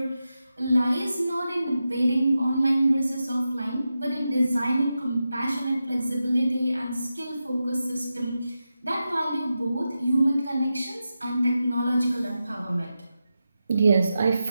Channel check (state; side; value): inverted; both; correlation -0.90